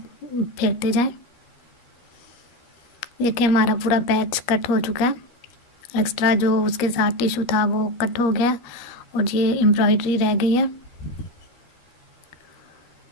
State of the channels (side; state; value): right; late; 13 ms